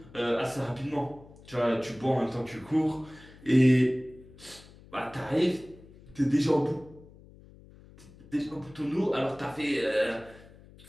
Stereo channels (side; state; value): left; noise; hum, 22 dB below the sound